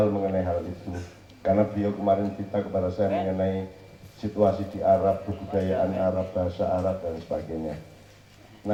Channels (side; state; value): both; identical; correlation 1.00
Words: mengenai hal itu, karena beliau kemarin cerita kepada saya mengenai situasi di Arab, kebudayaan Arab, bahasa Arab dan sebagainya.